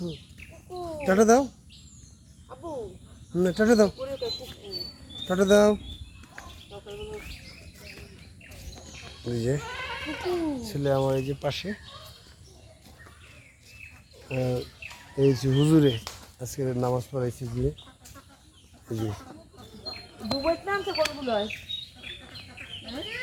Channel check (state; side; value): identical; both; correlation 1.00